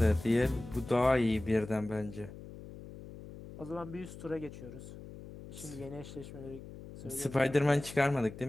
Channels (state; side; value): noise; left; hum, 14 dB below the sound